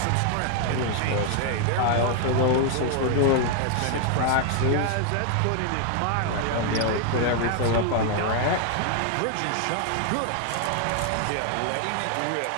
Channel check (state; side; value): different; both; correlation 0.00